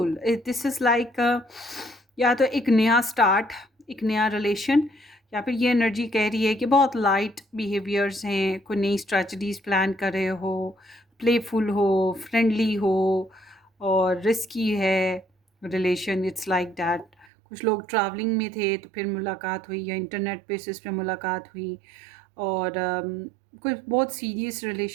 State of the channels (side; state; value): left; drops out; at 17.2 s